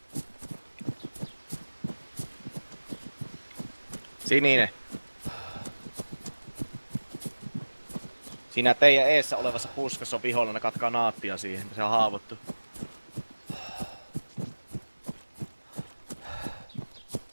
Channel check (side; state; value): both; inverted; correlation -1.00